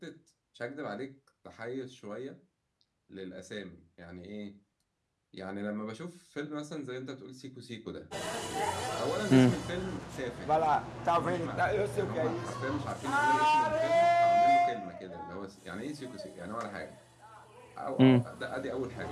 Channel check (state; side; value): identical; both; correlation 1.00